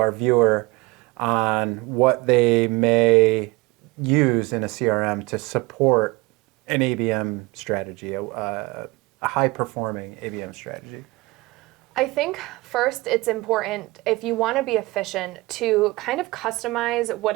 viewer on what they may use in a CRM to support an ABM strategy, a high-performing ABM strategy? I think first it's important, if you want to be efficient, to kind of customize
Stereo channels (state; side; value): quieter; left; 22.5 dB